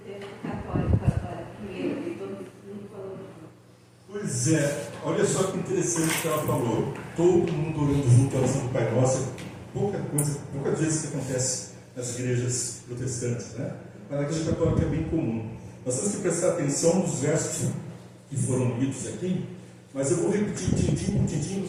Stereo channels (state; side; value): identical; both; correlation 1.00